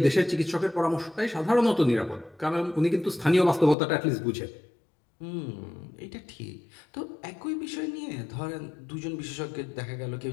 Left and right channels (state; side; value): drops out; right; at 3.8 s